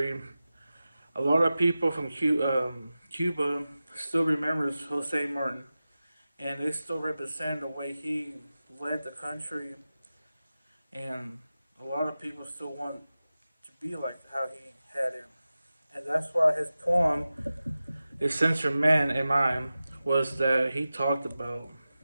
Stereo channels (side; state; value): both; inverted; correlation -0.95